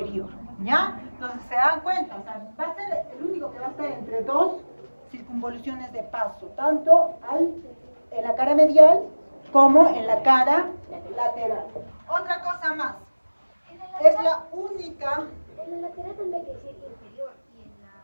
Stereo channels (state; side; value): inverted; both; correlation -1.00